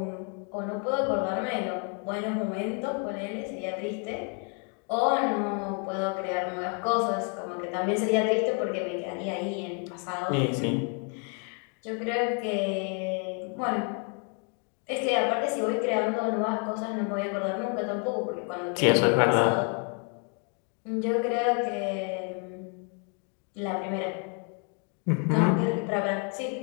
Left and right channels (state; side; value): quieter; right; 39.3 dB